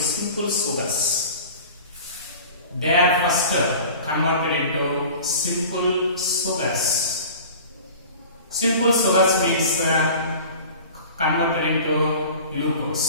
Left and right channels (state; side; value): inverted; both; correlation -0.41